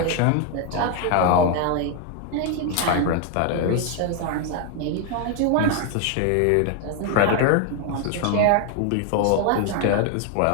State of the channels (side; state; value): both; different; correlation 0.01